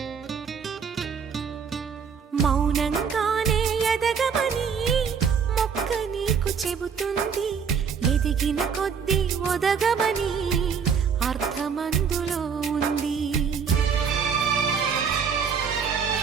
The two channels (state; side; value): quieter; left; 6.5 dB